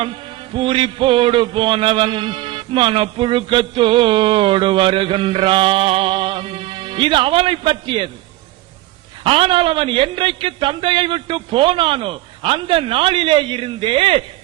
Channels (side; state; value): left; quieter; 17.1 dB